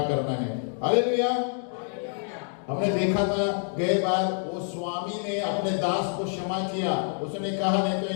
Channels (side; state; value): right; silent; 59 dB below the other